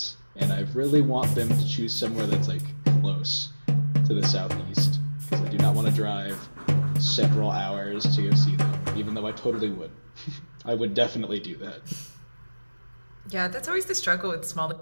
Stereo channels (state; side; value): inverted; both; correlation -1.00